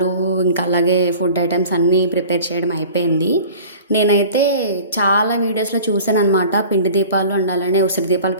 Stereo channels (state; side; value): inverted; both; correlation -0.43